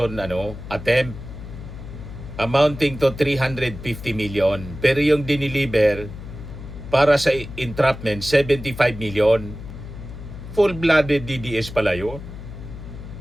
attempt amounting to 350 million. Pero yung diniliver para sa entrapment, 75 million. Full-blooded DDS pala yun.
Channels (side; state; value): left; noise; hum, 12 dB below the sound